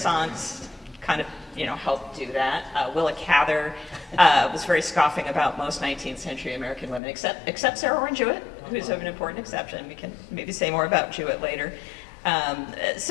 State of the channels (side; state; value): right; drops out; at 7.0 s